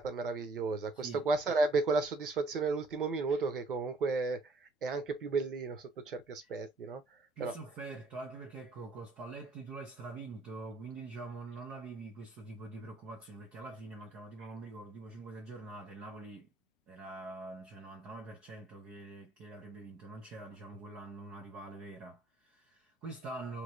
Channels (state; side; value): quieter; left; 3.3 dB